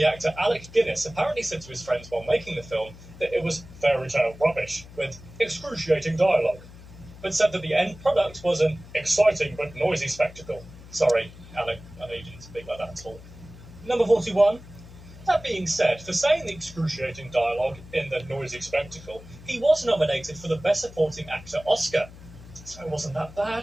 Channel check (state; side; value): noise; left; hum, 18 dB below the sound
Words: actor Alec Guinness apparently said to his friends while making the film that it was fairy tale rubbish with excruciating dialogue. but said that the end product was an exciting but noisy spectacle. Sorry, Alec, I know you didn't speak like that at all. Number 41. That being said, for saying the excruciating dialogue in the noisy spectacle, he was nominated for the Best Supporting Actor Oscar. So it wasn't that